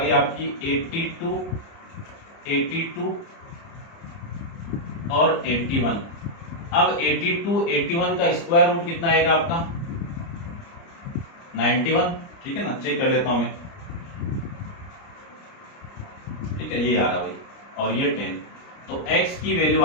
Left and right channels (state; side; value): late; right; 29 ms